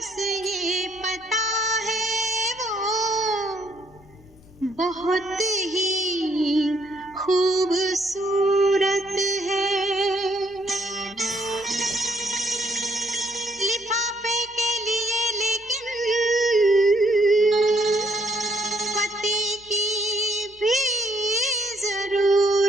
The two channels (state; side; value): noise; left; hum, 28 dB below the sound